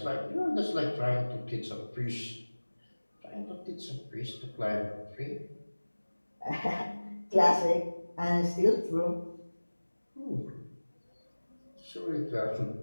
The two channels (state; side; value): inverted; both; correlation -1.00